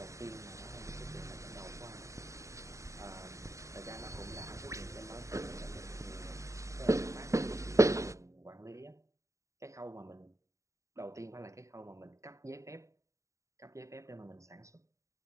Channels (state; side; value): late; left; 0.15 ms